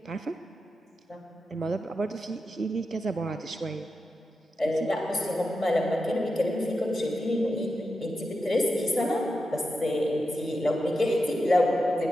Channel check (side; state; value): both; normal; correlation 0.89